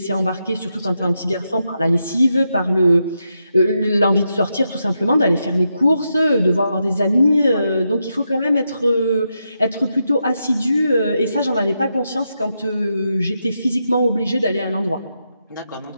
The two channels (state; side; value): inverted; both; correlation -0.84